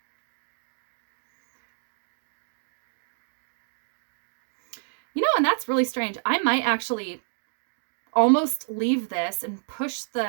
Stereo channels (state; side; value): silent; left; digital silence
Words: You know, and that's really strange. I might actually almost leave this and push